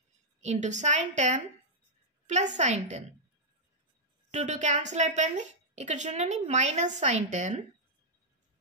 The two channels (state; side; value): normal; both; correlation -0.08